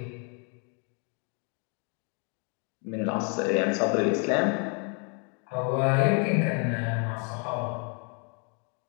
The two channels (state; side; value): quieter; right; 37.9 dB